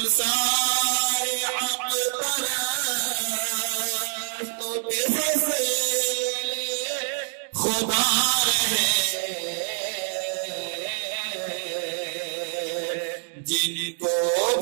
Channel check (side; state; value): left; silent; digital silence